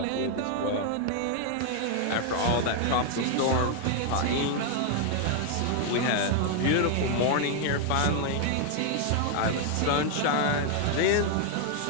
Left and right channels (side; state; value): both; different; correlation 0.00